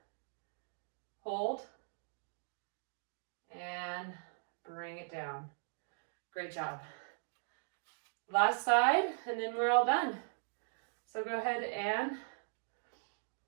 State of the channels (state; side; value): silent; left; digital silence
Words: hold. And bring it down. Great job. Last side, and then we're all done. So go ahead and,